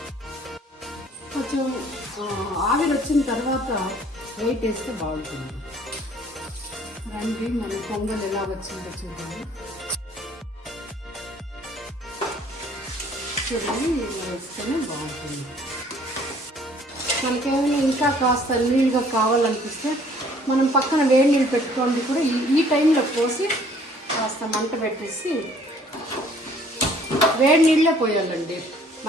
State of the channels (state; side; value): normal; both; correlation 0.58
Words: కొంచెం ఆవిరి వచ్చిన తర్వాత వెయిట్ వేస్తే బాగుంటుంది. రండి, మన పొంగల్ ఎలా వచ్చిందో చూడండి. చూడండి, ఇలా వేస్తేనే బాగుంటుంది. మనకేమైనా ఇంకా కాస్త నీళ్ళుగా కావాలనిపిస్తే మనం పక్కన వేడి నీళ్ళు పెట్టుకోండి. కూడా ఈ టైంలో పోసి కాస్త మంట పెట్టేసి వేడి నీళ్ళే పోయాలండి.